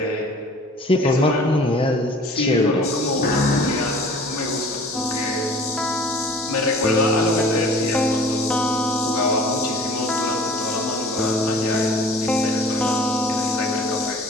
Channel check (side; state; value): both; normal; correlation 0.47